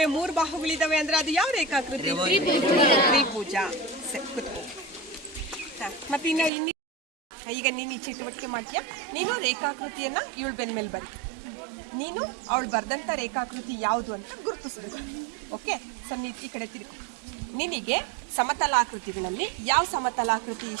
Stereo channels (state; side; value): drops out; left; at 6.5 s